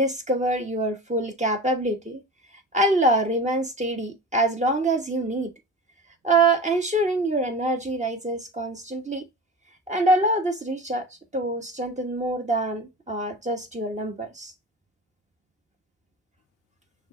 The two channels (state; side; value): normal; both; correlation 0.32